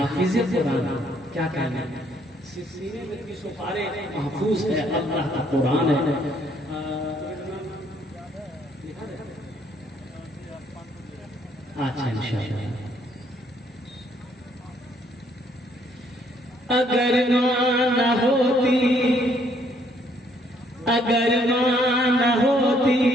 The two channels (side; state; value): both; normal; correlation 0.67